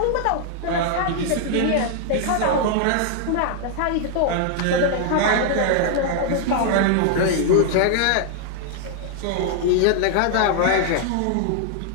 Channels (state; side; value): different; both; correlation 0.00